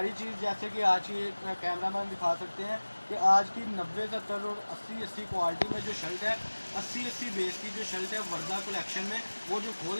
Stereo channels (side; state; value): both; inverted; correlation -1.00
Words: चीज़ जैसे कि आज की कैमरा मैन दिखा सकते हैं कि आज की 90, 70 और 80 क्वालिटी में जो शर्ट है, 80 बेस की जो शर्ट है वर्दा कलेक्शन में, वो जो खोल